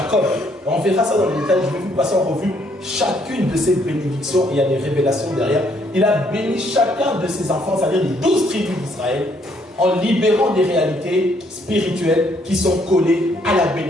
on verra ça dans les détails, je vais vous passer en revue chacune de ses bénédictions, il y a des révélations derrière. Il a béni chacun de ses enfants, c'est-à-dire les 12 tribus d'Israël, en libérant des réalités spirituelles qui sont collées à la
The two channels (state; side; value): normal; both; correlation 0.68